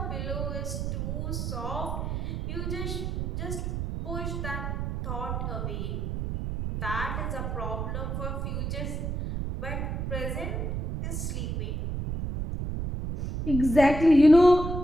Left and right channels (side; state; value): right; noise; rumble, 3 dB below the sound